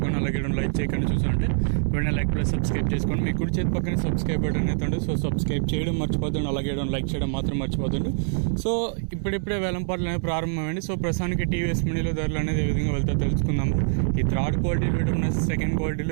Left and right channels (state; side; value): silent; left; 62 dB below the other